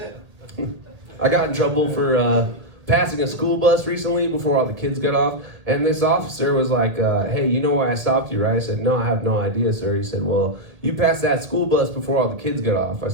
I got in trouble for passing a school bus recently before all the kids got off, and this officer was like, hey, you know why I stopped you, right? I said, no, I have no idea, sir. He said, well, you passed that school bus before all the kids got off. I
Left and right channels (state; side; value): late; left; 1.8 ms